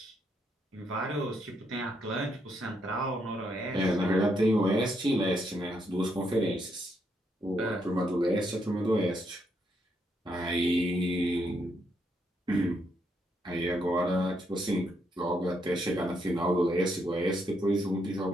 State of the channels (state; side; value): normal; both; correlation 0.77